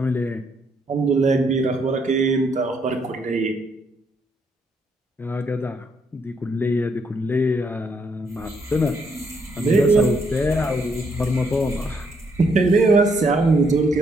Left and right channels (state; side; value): normal; both; correlation 0.73